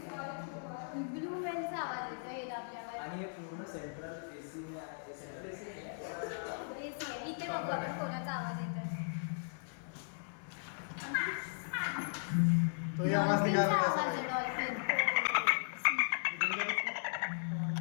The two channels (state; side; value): silent; right; 53 dB below the other